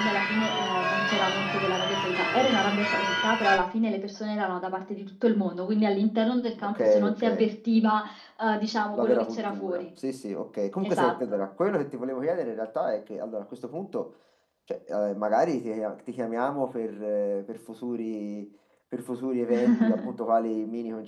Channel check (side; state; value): both; identical; correlation 1.00